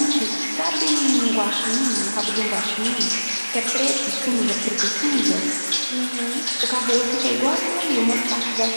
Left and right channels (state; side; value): inverted; both; correlation -1.00